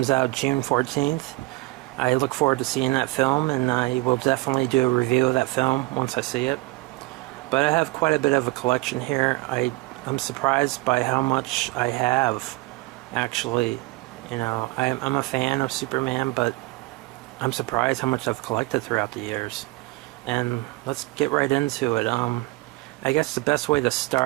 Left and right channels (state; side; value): quieter; left; 21.9 dB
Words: out June 14th. I look forward to seeing that film, and I will definitely do a review of that film once I see it. But I have quite a bit of a collection here. I'm surprised by how much I have, actually. You know, I'm a fan of Superman, but I'm surprised how much I've collected throughout the years. And let's get right into it. I guess the best way to